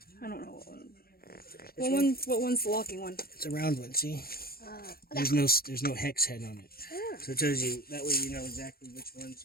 I don't know what one. What one's the locking one? It's a round one, see? Okay. There's no hex head on it. So it tells you, that way you know exactly which one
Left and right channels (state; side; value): late; right; 0.44 ms